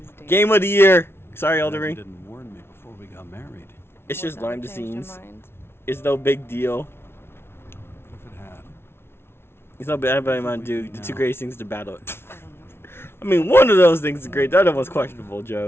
dangerous. Game of the year. Sorry, You Eldering. didn't warn me before we got married. It's just What's behind the ever changed your scenes. mind? It's no big deal. What if it had? It's no bad about Mountain Dew. The two greatest things to battle. I don't know. I mean, one of those things is great. The other one's questionable,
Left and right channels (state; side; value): late; right; 0.12 ms